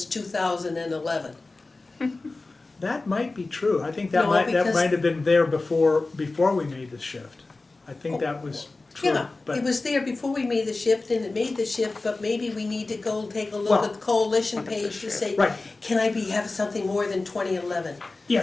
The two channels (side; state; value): right; quieter; 3.4 dB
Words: 2011. That might be true. I think that No, might because- have been there before we made the shift. I think that was true, Yeah, but. it was there before we made the shift, and it made the shift, but maybe we need to go take a look Well- at the coalition page to say, Right. can I have something more than 2011?